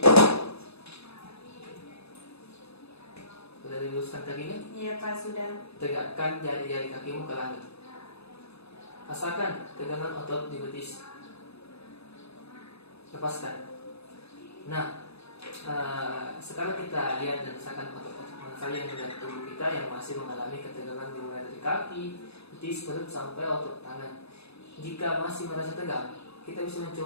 Sudah diluruskan kakinya? Iya Pak, sudah. Tegakkan jari-jari kakimu ke langit. Rasakan tegangan otot di betis. Lepaskan. Nah, sekarang kita lihat dan rasakan otot-otot mana saja yang ada di tubuh kita yang masih mengalami ketegangan dimulai dari kaki, betis, perut sampai otot tangan. Jika masih merasa tegang, kita bisa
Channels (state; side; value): late; right; 0.79 ms